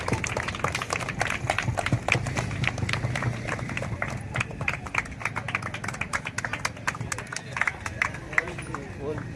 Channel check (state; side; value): identical; both; correlation 1.00